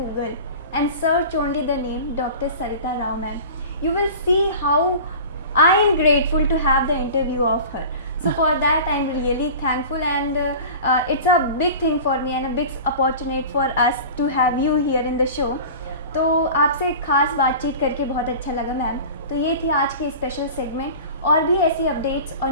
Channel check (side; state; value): both; inverted; correlation -0.37